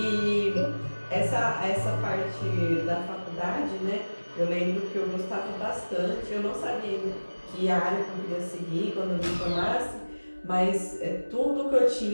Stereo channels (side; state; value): both; inverted; correlation -1.00